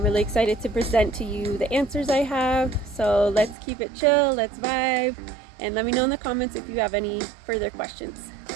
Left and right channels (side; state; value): left; drops out; at 3.6 s